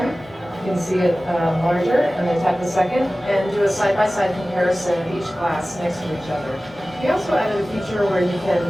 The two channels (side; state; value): both; normal; correlation 0.97